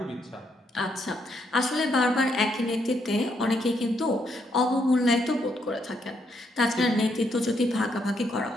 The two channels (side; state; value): both; normal; correlation 0.75